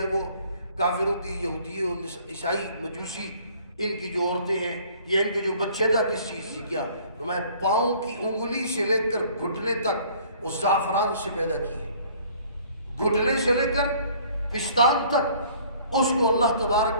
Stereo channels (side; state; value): both; inverted; correlation -0.55